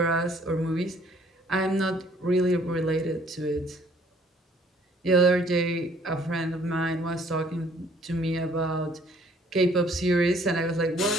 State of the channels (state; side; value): normal; both; correlation 0.60